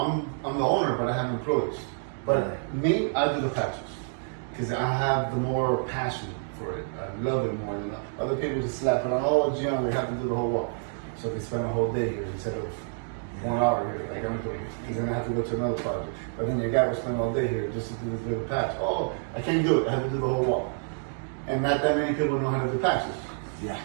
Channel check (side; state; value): left; silent; digital silence